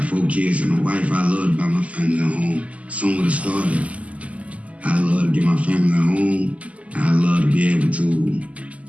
4 kids and a wife. I love to buy my family a home. Some would have started. I love to get my family a home. I love to be able to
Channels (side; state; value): left; late; 0.068 ms